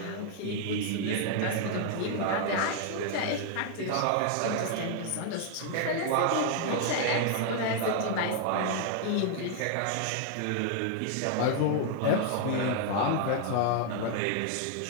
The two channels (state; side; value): different; both; correlation 0.00